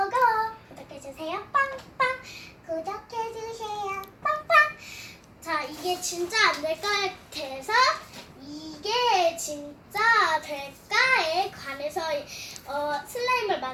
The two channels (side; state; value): both; identical; correlation 1.00